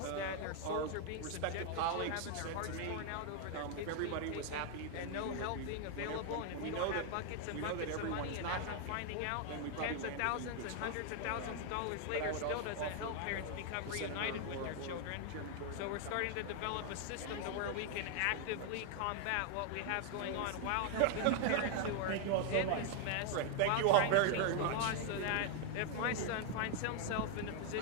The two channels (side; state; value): both; different; correlation 0.00